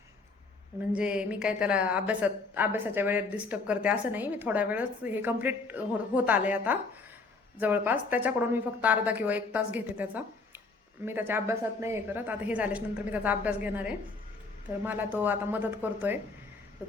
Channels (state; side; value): quieter; right; 3.9 dB